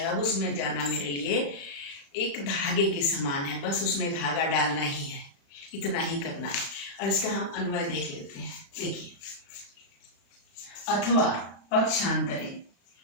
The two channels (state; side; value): late; right; 36 ms